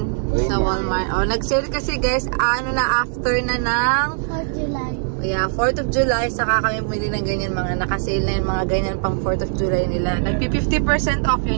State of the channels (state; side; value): silent; left; digital silence